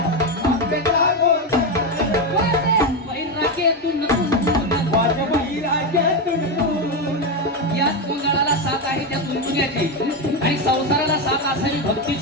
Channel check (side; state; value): both; normal; correlation 0.10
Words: अंबिका गोंधळ, वैराग्यातून वाट वैराग्यातून। याच गोंधळाला साथ आहे त्या तुंतुण्याची, आणि संसाराला साथ असावी